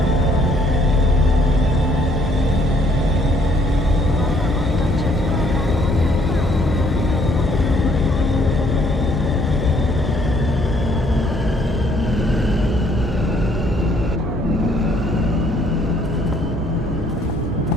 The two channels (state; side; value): normal; both; correlation 0.65